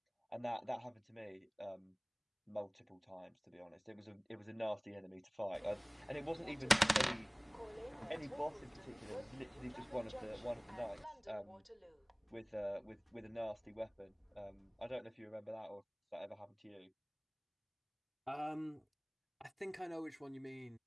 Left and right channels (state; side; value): identical; both; correlation 1.00